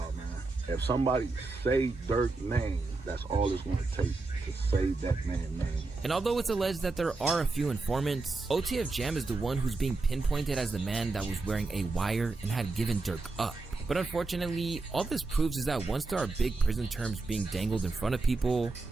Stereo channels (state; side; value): quieter; left; 3.6 dB